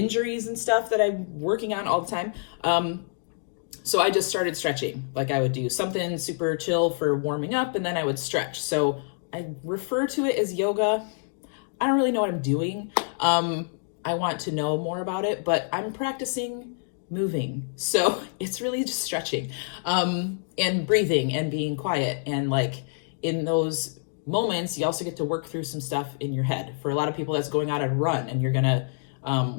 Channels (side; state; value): right; silent; digital silence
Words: and stuff that I'm working on all the time. So I just started stretching. Like I would do something super chill for warming up, and then I would stretch. So I refer to it as yoga. I don't really know what I'm doing. I want to know more about it, but I'm practicing moving. So it's really just stretching, and breathing and being quiet. And like in those moments, you also get to work through some stuff in your head. For a lot of people, that's going out and run, and you're gonna